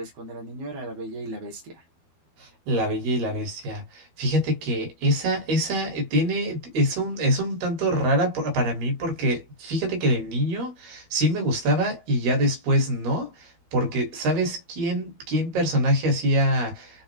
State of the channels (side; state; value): left; late; 12 ms